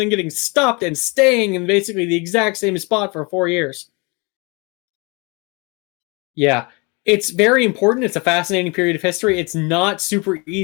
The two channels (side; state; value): right; quieter; 29.0 dB